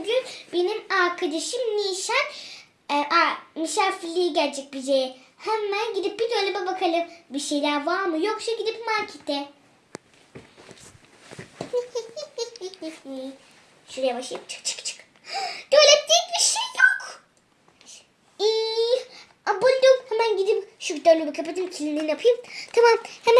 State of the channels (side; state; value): both; identical; correlation 1.00